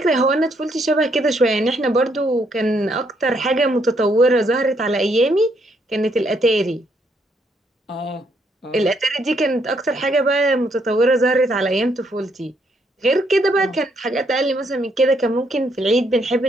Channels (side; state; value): both; normal; correlation 0.73